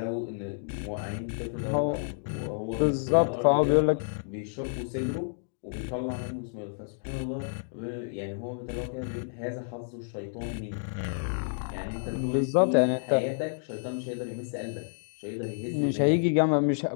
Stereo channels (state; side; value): silent; right; digital silence